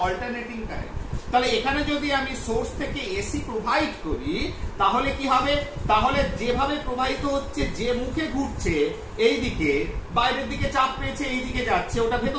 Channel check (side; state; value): both; identical; correlation 1.00